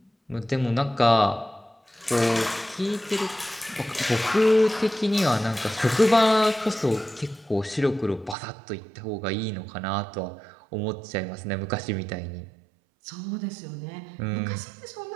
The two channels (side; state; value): left; drops out; at 8.3 s